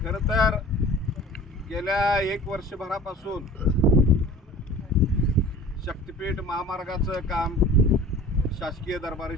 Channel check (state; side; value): normal; both; correlation 0.43